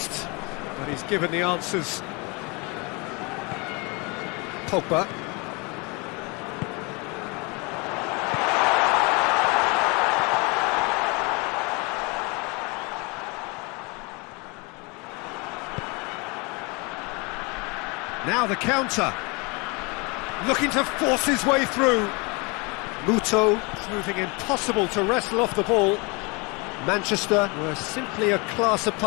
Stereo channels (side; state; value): right; quieter; 29.1 dB